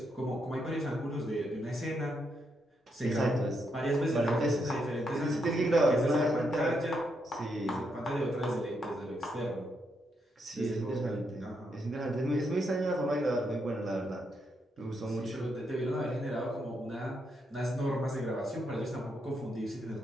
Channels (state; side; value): normal; both; correlation 0.79